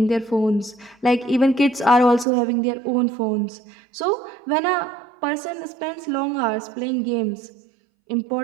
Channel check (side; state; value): left; drops out; at 2.2 s